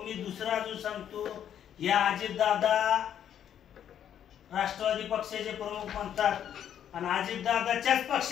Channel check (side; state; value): right; quieter; 9.7 dB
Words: मी दुसरा अजून सांगतो, या अजितदादा राष्ट्रवादी पक्षाचे प्रमुख म्हणतात आणि अजितदादाच्याच